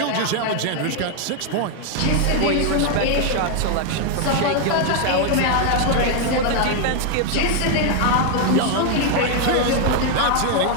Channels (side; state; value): both; different; correlation 0.00